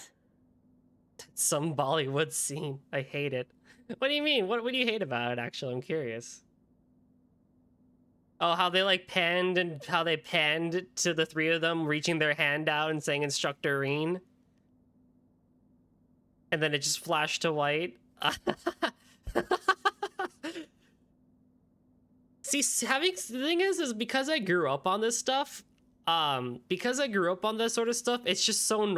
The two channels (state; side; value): identical; both; correlation 1.00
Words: Some Bollywood scene. I hate it. What do you mean? What do you hate about it, actually? I'm curious. Oh, how they like panned and how they panned to the three of them reaching their hand out and saying Instructor Reen. And then it just flashed to white. See, the thing is because I grew up on this stuff, because I grew up on this sort of stuff, it's just so